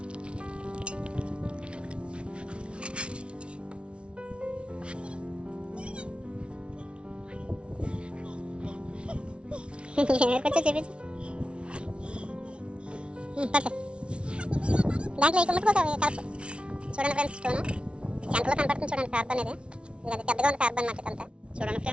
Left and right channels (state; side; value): late; left; 0.058 ms